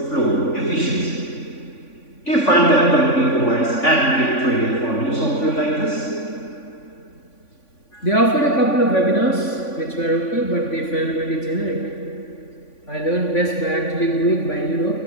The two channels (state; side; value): late; right; 3.5 ms